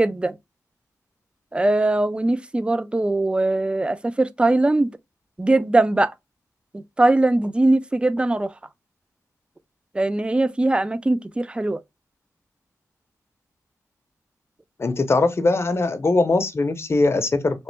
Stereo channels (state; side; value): normal; both; correlation 0.93